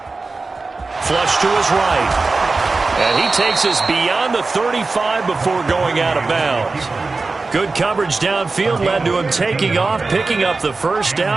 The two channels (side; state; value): left; quieter; 3.8 dB